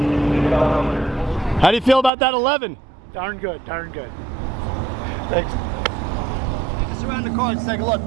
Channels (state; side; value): drops out; left; at 2.1 s